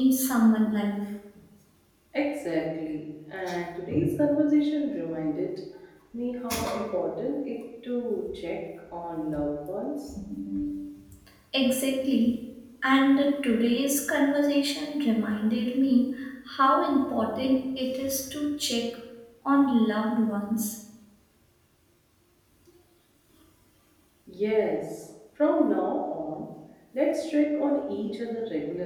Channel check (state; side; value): identical; both; correlation 1.00